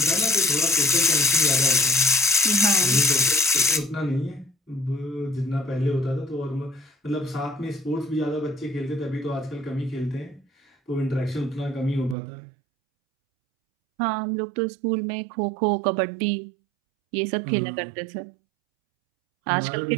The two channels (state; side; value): drops out; left; at 12.2 s